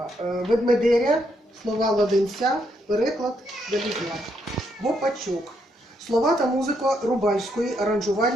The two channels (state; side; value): normal; both; correlation 0.76